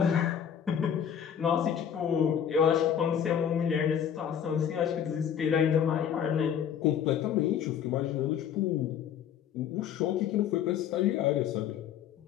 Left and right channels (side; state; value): right; quieter; 8.7 dB